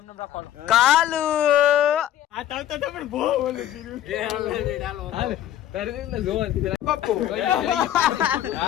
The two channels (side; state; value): right; quieter; 11.9 dB